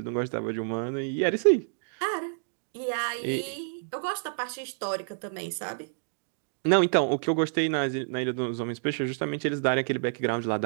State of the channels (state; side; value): silent; left; digital silence